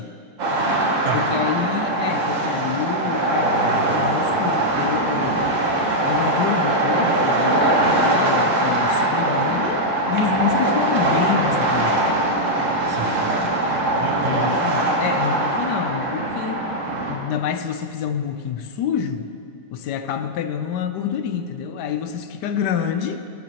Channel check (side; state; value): both; normal; correlation -0.04